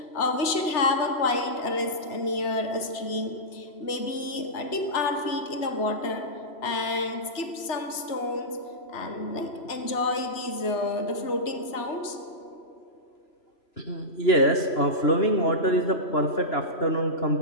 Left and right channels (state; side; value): late; right; 3.0 ms